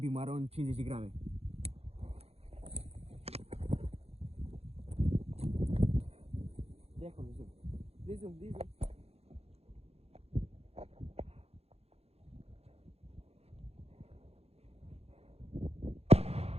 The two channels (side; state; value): left; late; 0.29 ms